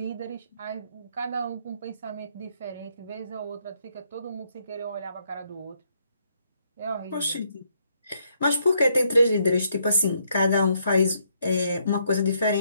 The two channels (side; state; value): both; inverted; correlation -0.73